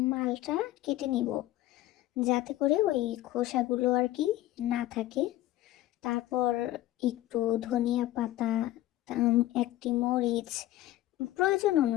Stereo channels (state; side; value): quieter; right; 15.1 dB